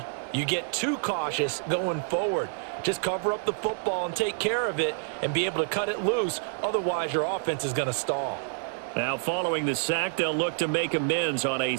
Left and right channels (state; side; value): silent; left; digital silence